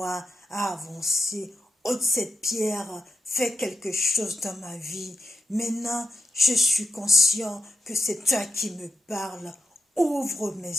à avancer. Ôte cette pierre, fais quelque chose dans ma vie. Maintenant, je suis conscient que c'est toi qui me parles. Ouvre mes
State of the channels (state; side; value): normal; both; correlation 0.88